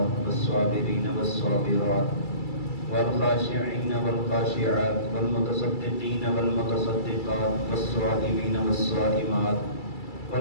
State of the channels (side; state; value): right; late; 2.3 ms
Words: والصابرين والصابرات والخاشعين والخاشعات والمتصدقين والمتصدقات والصائمين والصائمات